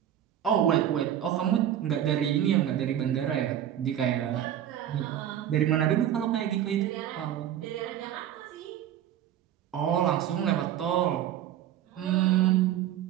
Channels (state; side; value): quieter; left; 11.0 dB